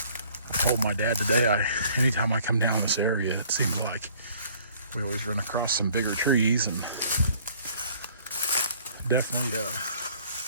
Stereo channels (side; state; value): both; inverted; correlation -0.57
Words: I told my dad today, anytime I come down this area, it seems like we always run across some bigger trees, and definitely that.